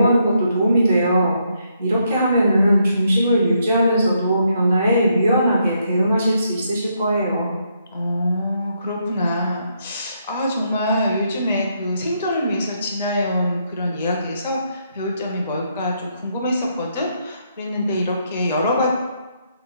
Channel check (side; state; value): both; inverted; correlation -0.76